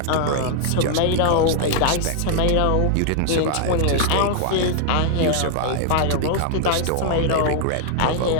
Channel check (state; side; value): different; both; correlation 0.00